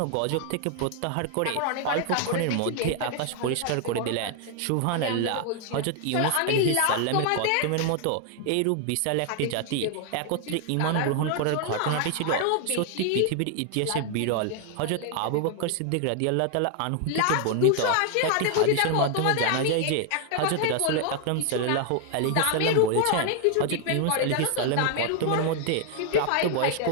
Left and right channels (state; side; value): different; both; correlation 0.00